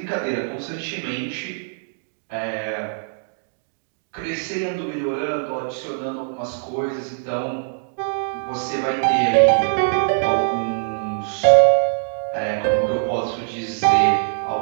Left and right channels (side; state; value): left; silent; digital silence